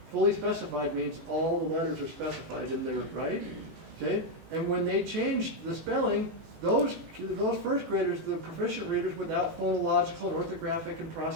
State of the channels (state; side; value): late; left; 18 ms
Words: Fully specified means all the letters are specified in there, right? Okay, and when they changed the spelling, those first graders, the proficient readers without phonological and orthographic and